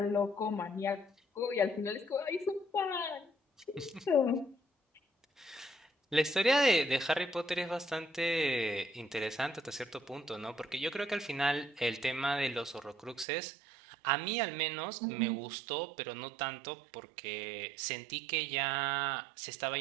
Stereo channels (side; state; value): left; drops out; at 13.2 s